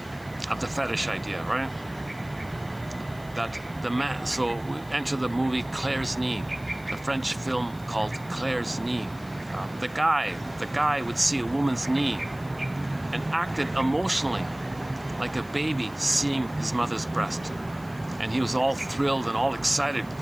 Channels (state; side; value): noise; left; hiss, 24 dB below the sound